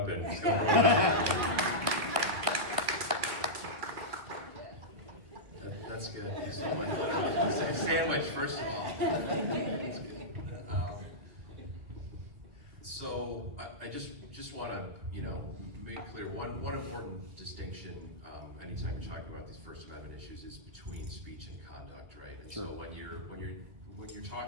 So That's good. So much sandwich, first of all. So I just want to make clear one important distinction anytime you're talking about these First Amendment issues is between speech and conduct, right? And Sure. so when you're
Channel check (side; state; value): left; late; 2.3 ms